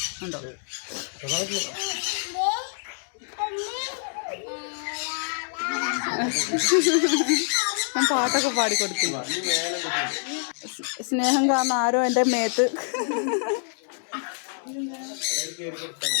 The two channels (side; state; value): right; silent; digital silence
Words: ഉണ്ടോ? ഞാൻ പാട്ടൊക്കെ പാടിക്കൊടുത്തു. സ്നേഹം കാരണം ആരോ എൻ്റെ മേത്ത്.